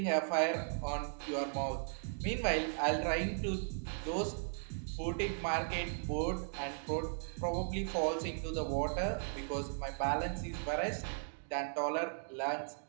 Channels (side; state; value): left; silent; digital silence